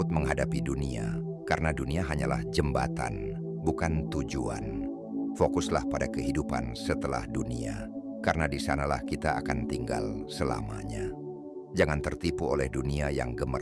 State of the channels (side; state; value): both; identical; correlation 1.00